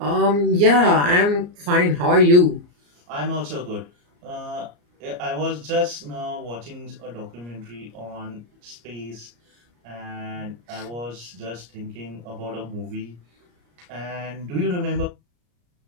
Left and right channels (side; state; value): left; late; 34 ms